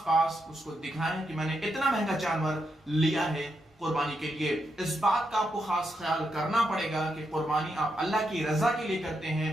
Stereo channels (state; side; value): normal; both; correlation 0.82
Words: उसको दिखाएं कि मैंने इतना महंगा जानवर लिया है कुर्बानी के लिए। इस बात का आपको खास ख्याल करना पड़ेगा कि कुर्बानी आप अल्लाह की रजा के लिए करते हैं,